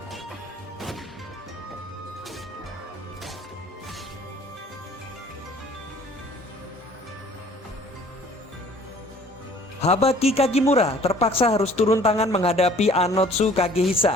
Habaki Kagimura terpaksa harus turun tangan menghadapi Anotsu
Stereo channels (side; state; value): both; normal; correlation 0.53